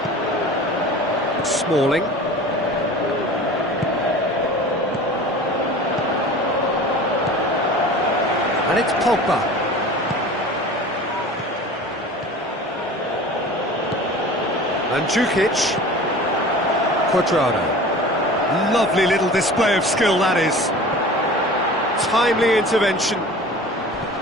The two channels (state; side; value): normal; both; correlation 0.40